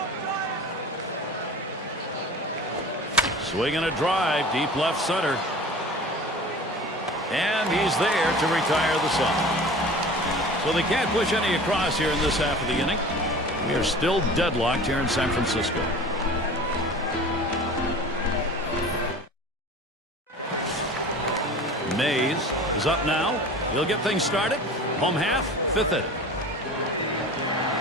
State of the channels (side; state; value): both; normal; correlation 0.39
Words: Swinging a drive, deep left center. And he's there to retire the side. So they can't push any across here in this half of the inning. We are still deadlocked here in San Francisco. Mays is up now. He'll get things started. Home half, 5th inning.